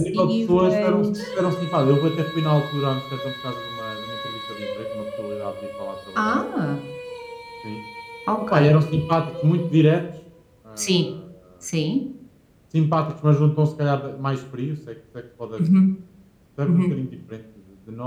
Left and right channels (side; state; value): both; identical; correlation 1.00